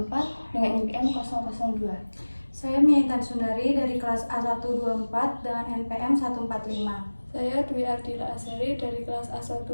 dengan NPM 002. Saya Miaitan Sundari dari kelas A124 dengan NPM 145. Saya Dwi Ardila Azhari dari kelas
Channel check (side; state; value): both; inverted; correlation -1.00